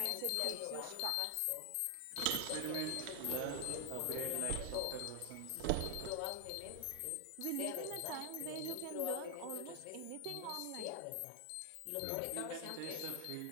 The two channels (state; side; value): different; both; correlation 0.00